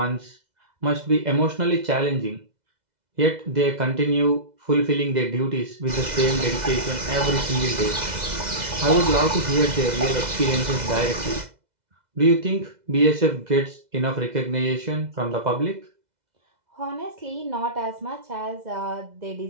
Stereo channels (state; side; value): late; left; 2.0 ms